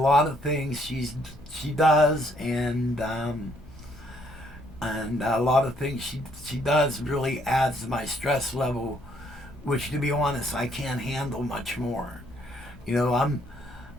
of things she does, and a lot of things she does really adds to my stress level, which, to be honest, I can't handle much more.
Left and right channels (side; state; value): both; normal; correlation 0.68